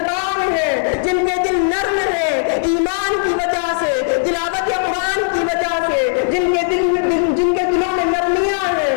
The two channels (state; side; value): silent; right; digital silence